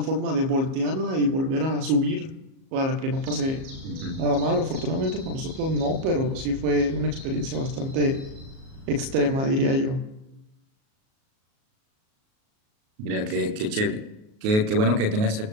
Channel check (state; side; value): late; left; 37 ms